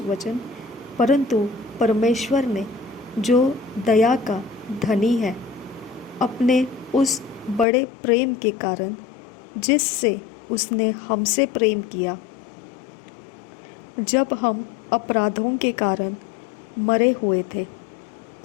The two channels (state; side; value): drops out; right; at 7.7 s